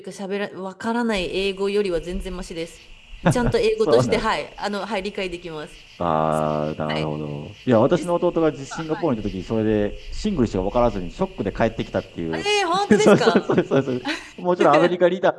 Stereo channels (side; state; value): both; identical; correlation 1.00